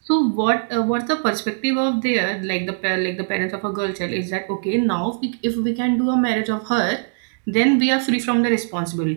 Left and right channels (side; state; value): left; silent; digital silence